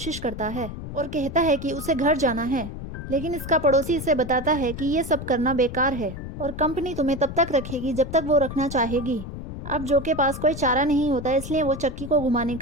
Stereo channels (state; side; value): noise; left; rumble, 9 dB below the sound